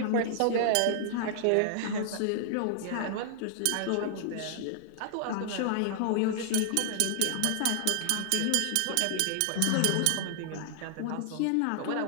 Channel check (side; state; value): both; different; correlation -0.01